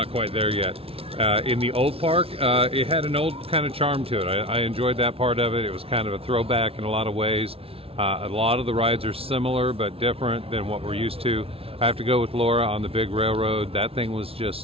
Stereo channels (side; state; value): left; late; 0.27 ms